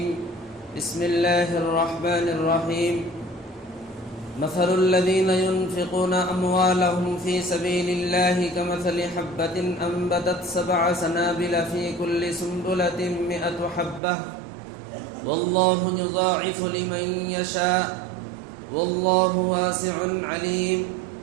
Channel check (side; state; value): left; drops out; at 14.0 s